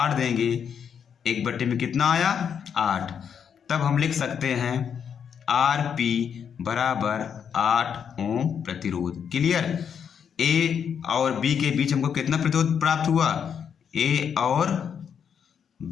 देंगे, 1 में कितना आया 8। तब हम लिख सकते हैं RP बराबर 8 ओम प्रतिरोध। क्लियर। ए और बी के बीच हमको कितना प्रतिरोध प्राप्त हुआ, ए और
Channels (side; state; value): right; quieter; 7.6 dB